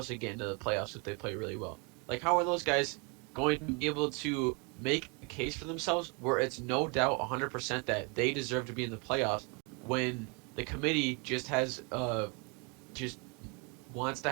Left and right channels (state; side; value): quieter; left; 32.4 dB